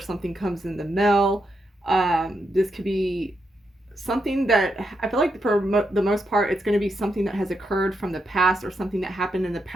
comes in the mail. This could be something that I feel like for the most part, it's going to be something that has occurred from the past or something that happened in the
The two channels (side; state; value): both; normal; correlation 0.83